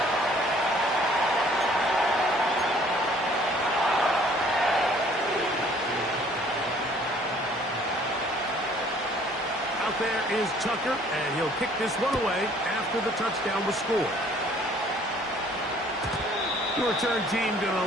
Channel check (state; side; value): normal; both; correlation 0.57